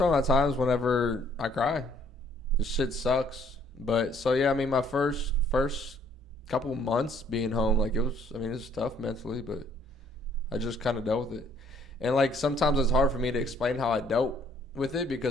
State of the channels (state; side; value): normal; both; correlation 0.62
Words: times whenever I cry. This shit sucks. But so yeah, I mean my first couple months being home, like it's tough mentally, but I just kind of dealt with it. And like sometimes it's hard for me to explain how I dealt with it